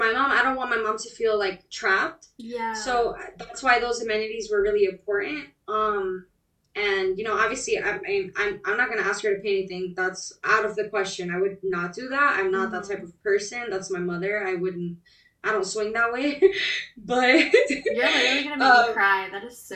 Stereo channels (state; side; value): identical; both; correlation 1.00